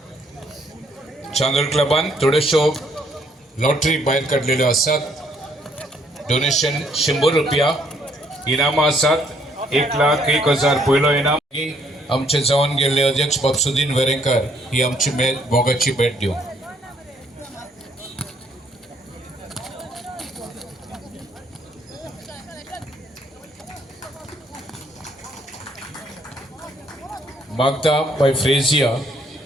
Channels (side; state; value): both; normal; correlation 0.67